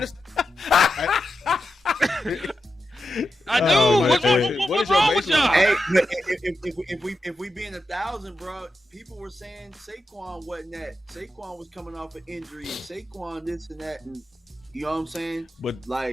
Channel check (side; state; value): both; normal; correlation 0.89